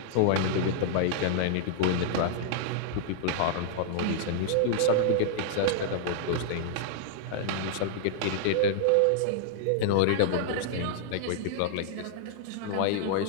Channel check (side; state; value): both; different; correlation -0.01